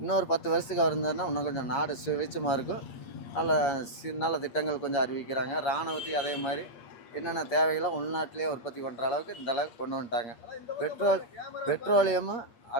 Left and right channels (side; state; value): right; late; 8.5 ms